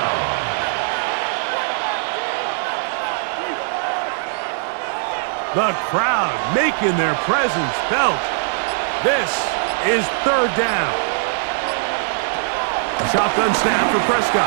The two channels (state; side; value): silent; left; digital silence